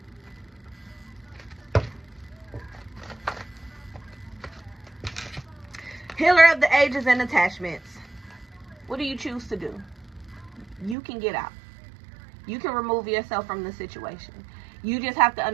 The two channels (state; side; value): drops out; left; at 11.0 s